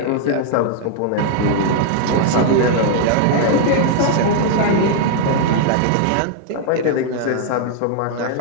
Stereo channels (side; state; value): both; different; correlation 0.00